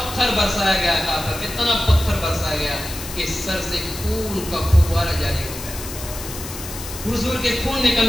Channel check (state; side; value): noise; left; hiss, 11 dB below the sound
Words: برسایا گیا تھا، اتنا پتھر برسایا گیا کہ سر سے خون کا فوارہ جاری ہو گیا، حضور کے خون